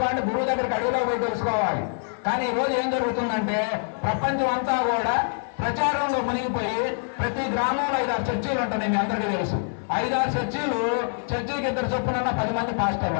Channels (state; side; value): silent; right; 62 dB below the other